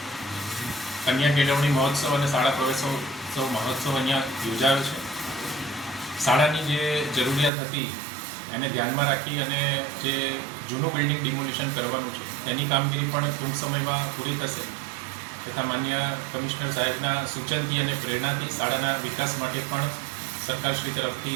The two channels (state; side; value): drops out; left; at 7.5 s